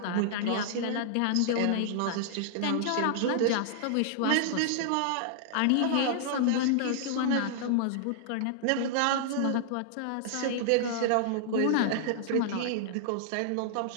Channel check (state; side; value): different; both; correlation -0.01